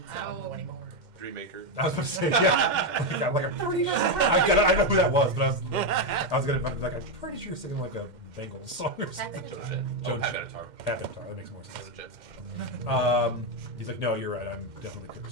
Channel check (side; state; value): left; late; 2.1 ms